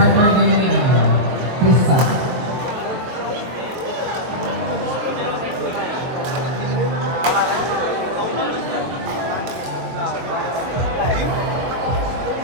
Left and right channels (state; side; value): late; left; 23 ms